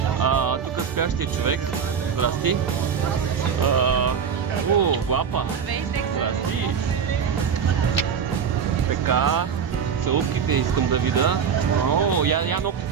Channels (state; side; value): quieter; left; 7.0 dB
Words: Тук спящия човек. Здрасти. Глапа. Здрасти. Така. Целувките искам да видя. Я